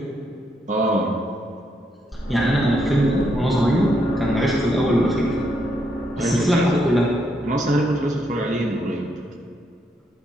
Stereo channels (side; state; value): both; normal; correlation 0.78